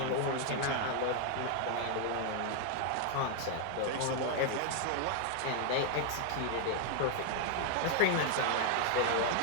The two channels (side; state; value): both; different; correlation 0.00